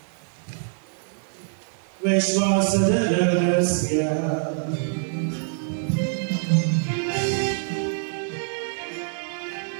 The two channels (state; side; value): silent; left; digital silence